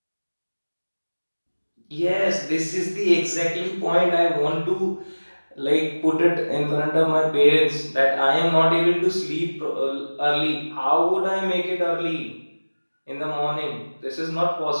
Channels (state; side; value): inverted; both; correlation -1.00